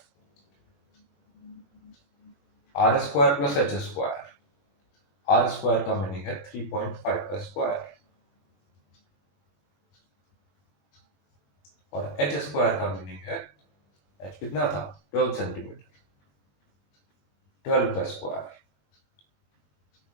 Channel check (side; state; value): right; late; 20 ms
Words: r square plus h square, r square का मीनिंग है 3.5 का स्क्वायर और एच स्क्वायर का मीनिंग है, एच कितना था 12 सेंटीमीटर, 12 का स्क्वायर।